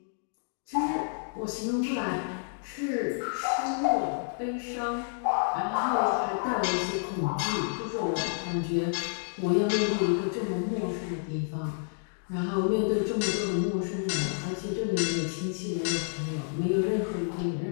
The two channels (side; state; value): right; silent; digital silence